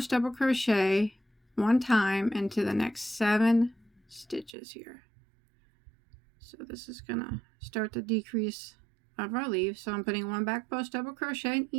double crochet 1 time into the next 7 stitches here. So this is gonna start the decrease of our leaf. So I'm putting 1 back post double crochet in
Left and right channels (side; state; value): left; drops out; at 4.5 s